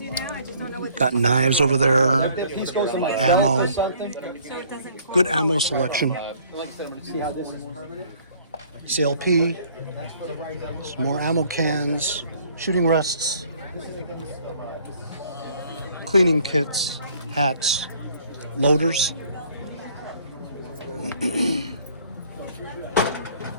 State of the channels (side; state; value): both; inverted; correlation -0.58